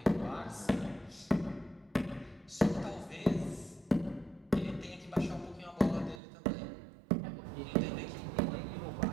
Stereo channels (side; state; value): left; drops out; at 6.2 s